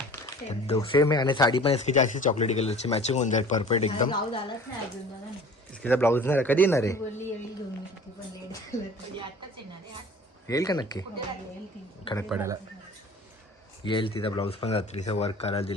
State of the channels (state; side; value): normal; both; correlation 0.45